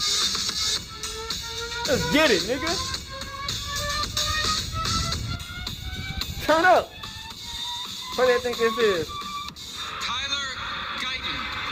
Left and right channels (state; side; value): identical; both; correlation 1.00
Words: Let's get it, nigga. Turn up. What do you think this is? Tyler Guyton,